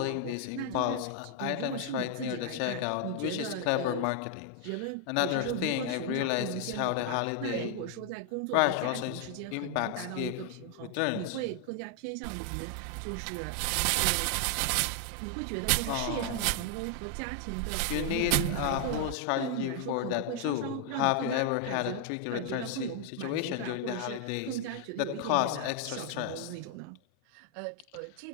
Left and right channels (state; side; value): different; both; correlation 0.00